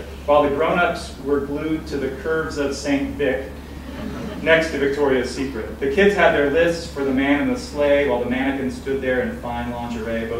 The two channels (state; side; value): identical; both; correlation 1.00